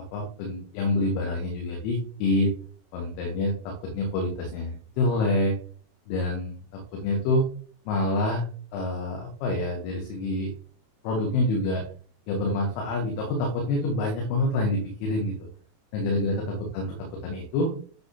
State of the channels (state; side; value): late; right; 28 ms